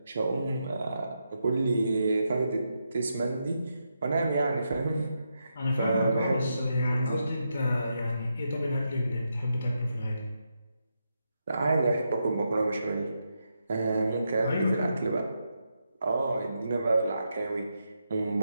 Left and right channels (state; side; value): inverted; both; correlation -0.84